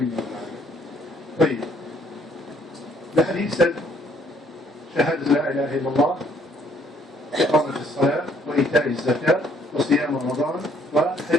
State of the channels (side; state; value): both; normal; correlation 0.64